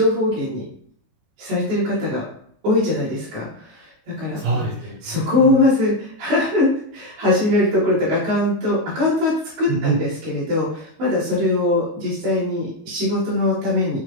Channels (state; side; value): late; left; 19 ms